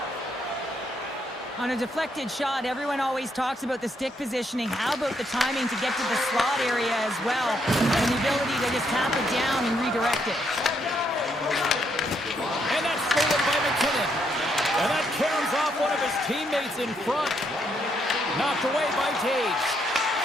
On a deflected shot, everyone always talks about the stick positioning. How about the timing to get to the slot area as well, and the ability to just tap it down and redirect it. And that's stolen by McKinnon. And that caroms off one of his teammates in front. Knocked away by Taves.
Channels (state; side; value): normal; both; correlation 0.75